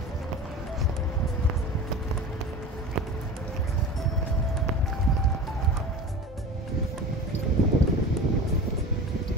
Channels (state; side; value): normal; both; correlation 0.34